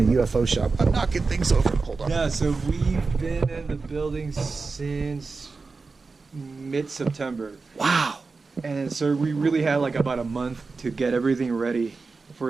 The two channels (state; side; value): quieter; left; 4.2 dB